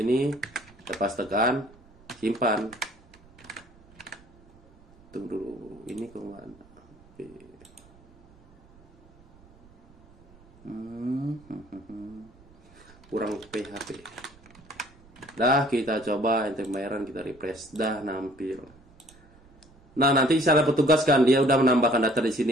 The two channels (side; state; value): right; noise; rumble, 27 dB below the sound